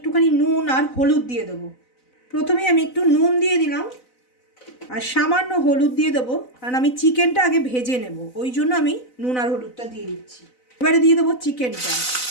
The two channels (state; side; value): late; right; 4.0 ms